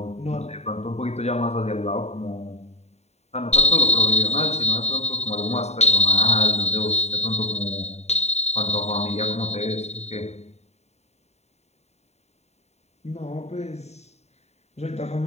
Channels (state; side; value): late; right; 0.32 ms